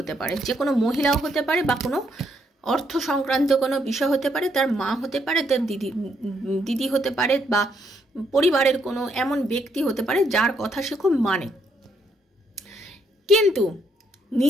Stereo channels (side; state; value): both; normal; correlation 0.74